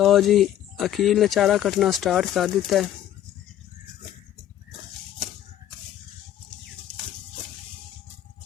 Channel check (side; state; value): right; quieter; 11.7 dB